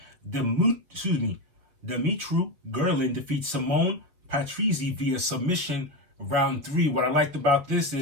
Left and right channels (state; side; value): late; left; 7.2 ms